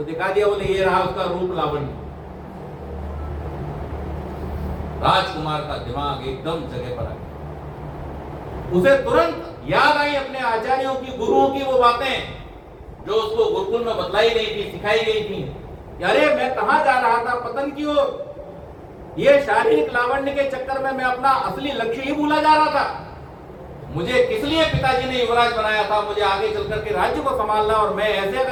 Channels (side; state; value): both; identical; correlation 1.00